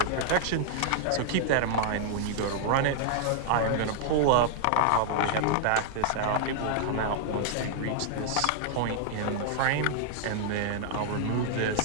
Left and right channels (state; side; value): different; both; correlation -0.01